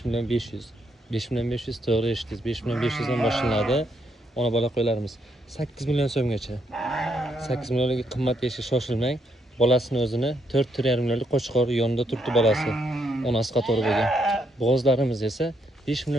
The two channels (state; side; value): normal; both; correlation 0.75